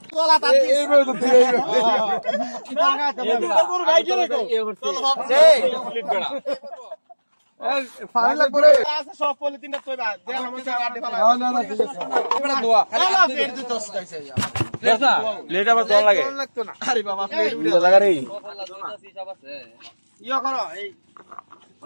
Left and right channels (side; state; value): both; inverted; correlation -1.00